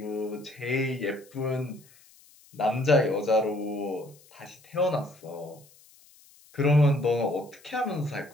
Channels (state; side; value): noise; left; hiss, 27 dB below the sound